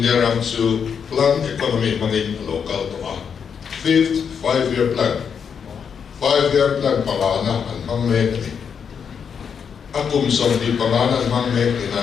their to plan economy money local to 5th 5-year plan. 5-year plan Pagana and Mangmekni. Akum Somdi Pagana and Mangmekni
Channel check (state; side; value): quieter; right; 6.9 dB